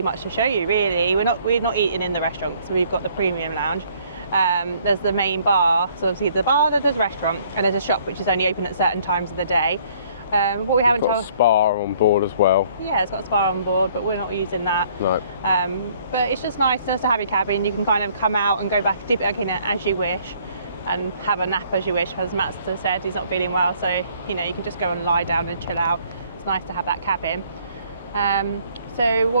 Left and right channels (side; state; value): both; inverted; correlation -0.61